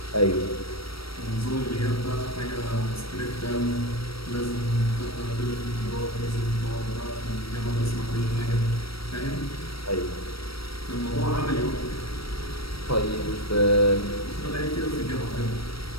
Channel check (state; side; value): late; right; 0.75 ms